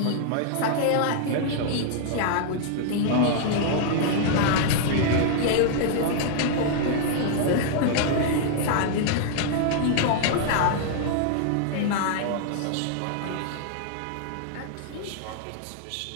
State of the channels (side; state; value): both; different; correlation -0.01